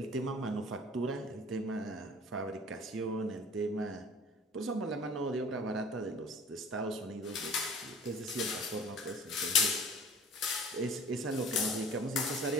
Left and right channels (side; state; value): both; normal; correlation 0.46